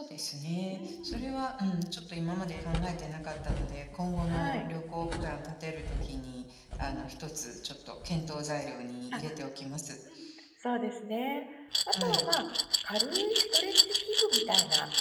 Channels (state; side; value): identical; both; correlation 1.00